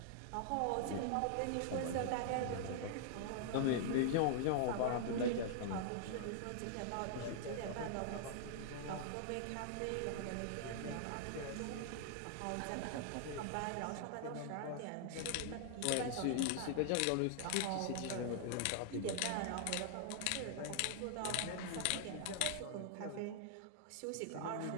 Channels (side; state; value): both; different; correlation -0.01